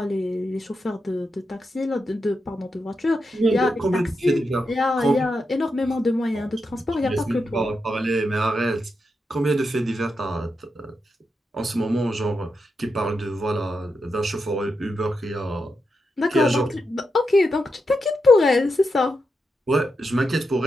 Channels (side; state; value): both; normal; correlation 0.86